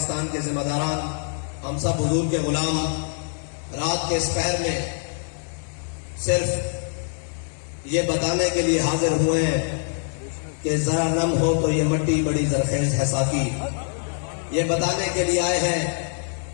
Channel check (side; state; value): right; silent; 62 dB below the other